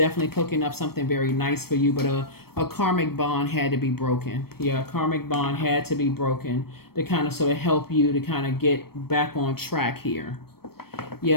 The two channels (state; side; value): late; right; 0.95 ms